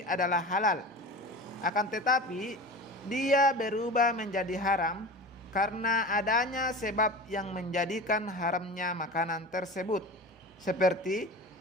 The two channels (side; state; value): both; normal; correlation 0.33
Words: adalah halal, akan tetapi dia berubah menjadi haram karena adanya sebab yang menjadikan haramnya makanan tersebut, seperti